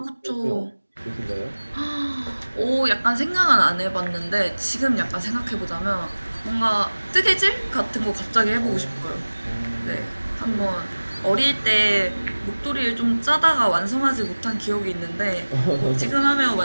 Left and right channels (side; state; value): both; inverted; correlation -1.00